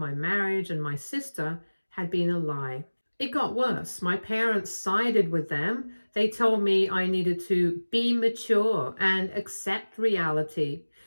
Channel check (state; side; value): inverted; both; correlation -1.00